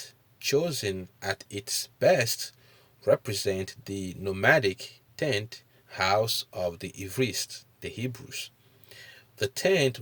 chosen at its best, represent the nomadic tent house of the Ivrists, the Hebrews. The tent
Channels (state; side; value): identical; both; correlation 1.00